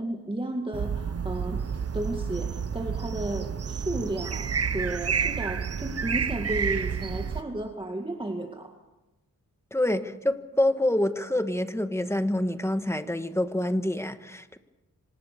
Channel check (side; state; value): both; normal; correlation 0.66